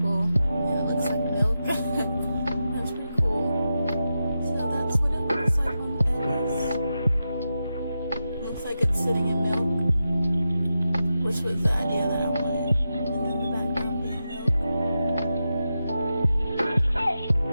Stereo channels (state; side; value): inverted; both; correlation -0.89